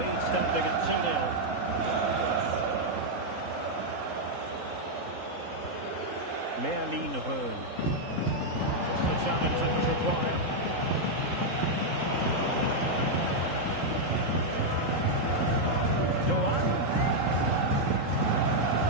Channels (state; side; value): late; left; 3.8 ms